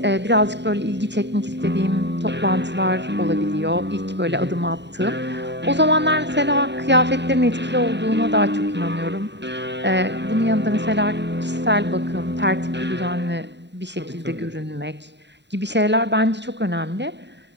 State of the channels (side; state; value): left; late; 0.51 ms